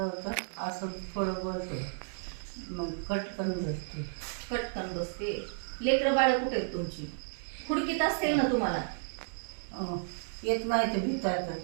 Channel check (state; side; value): silent; left; digital silence